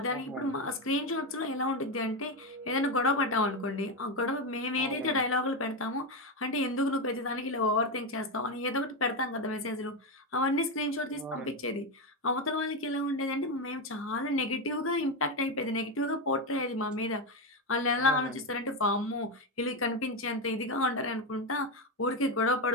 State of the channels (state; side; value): normal; both; correlation 0.11